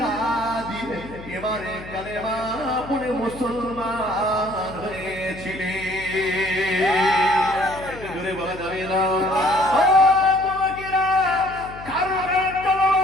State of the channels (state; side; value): noise; left; hum, 15 dB below the sound